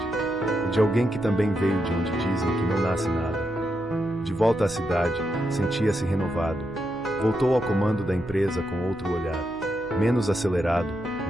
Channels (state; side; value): noise; right; hum, 21 dB below the sound